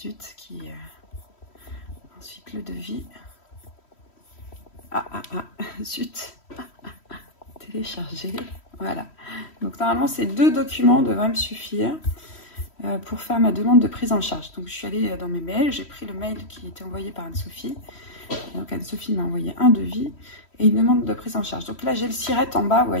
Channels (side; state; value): right; late; 3.1 ms